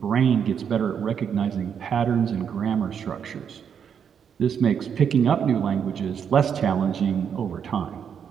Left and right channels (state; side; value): quieter; left; 7.7 dB